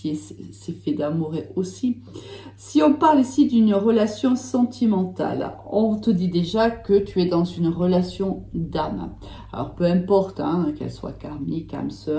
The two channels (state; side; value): identical; both; correlation 1.00